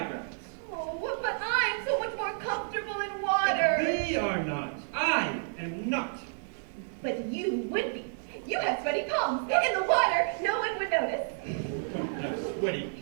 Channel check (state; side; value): silent; left; digital silence